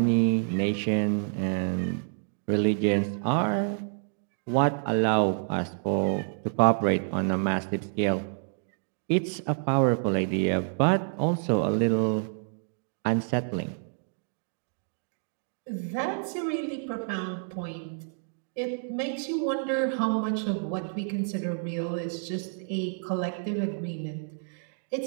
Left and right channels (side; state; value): left; silent; digital silence